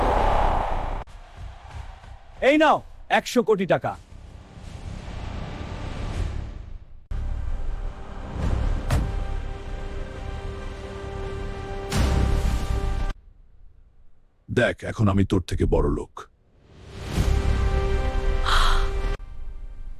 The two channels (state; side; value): identical; both; correlation 1.00